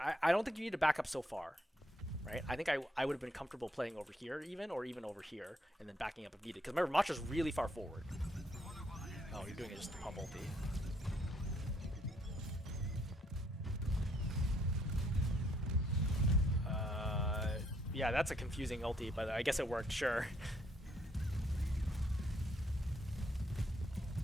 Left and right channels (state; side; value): normal; both; correlation 0.70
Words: I don't think you need to back up so far, right? I think I would have been comfortable playing over here or even over here, and then backing up if needed. Because remember, Macha's really far forward. Oh, you're doing it just to pump ulti. Yeah, that's a confusing ulti, but I guess it worked, sure.